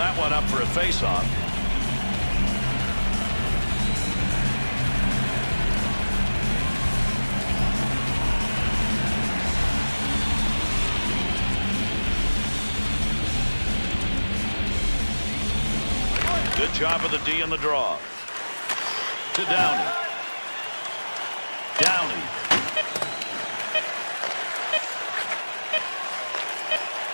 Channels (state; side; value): inverted; both; correlation -1.00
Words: one up for a face-off. Good job of the D in the draw. To Downey. Downey.